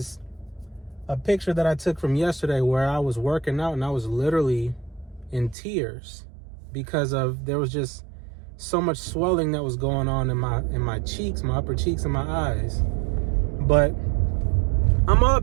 a picture that I took from yesterday where I was working out and I was literally in tears because there was just so much swelling that was going on in my cheeks, my upper cheeks and my eyes. But I'm all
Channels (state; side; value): drops out; left; at 5.6 s